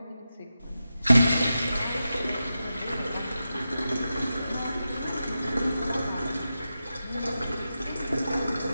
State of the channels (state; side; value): inverted; both; correlation -0.91